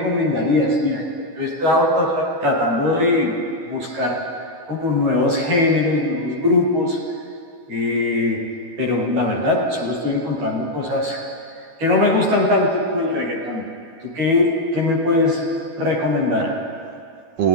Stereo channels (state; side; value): late; left; 12 ms